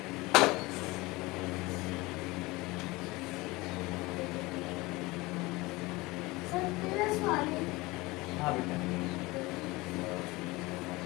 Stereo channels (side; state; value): right; quieter; 22.1 dB